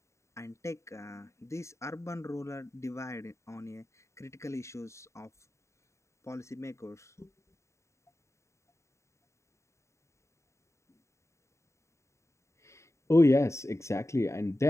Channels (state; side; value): late; right; 0.14 ms